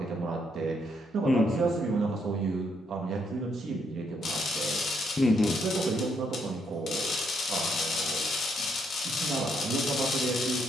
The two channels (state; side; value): normal; both; correlation 0.74